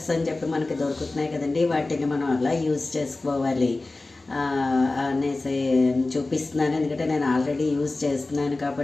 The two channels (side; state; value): right; quieter; 3.2 dB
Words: అని చెప్పి మనకి దొరుకుతున్నాయి కదండి, వాటిని మనం అలా యూజ్ చేసుకోవాలి అనేసి చూపిస్తున్నాను. ఎందుకంటే నేను ఆల్రెడీ యూజ్ చేస్తున్నాను